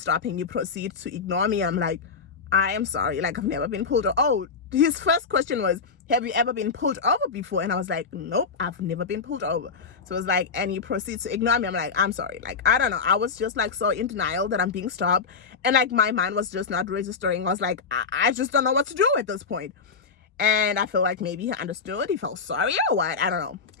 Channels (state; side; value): quieter; right; 5.3 dB